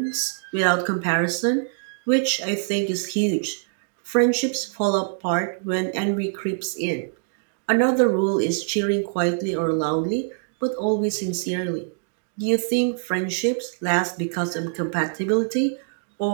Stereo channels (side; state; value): left; silent; digital silence